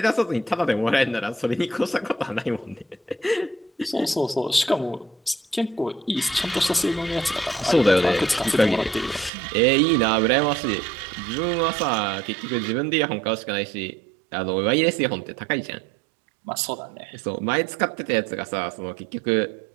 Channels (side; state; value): left; drops out; at 9.3 s